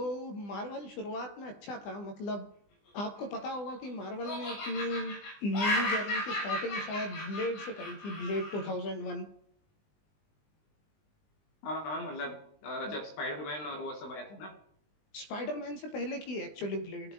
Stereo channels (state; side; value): late; right; 20 ms